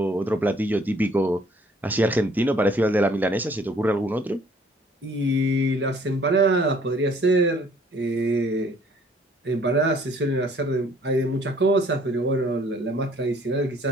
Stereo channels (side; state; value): both; normal; correlation 0.59